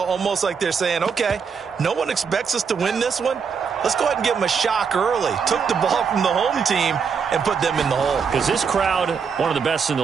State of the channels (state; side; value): quieter; left; 6.1 dB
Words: almost like they're saying, okay, no one expects us to win this one. Let's go ahead and give them a shock early. Took the ball from the home team and put them in the hole. Because this crowd, one of the best in the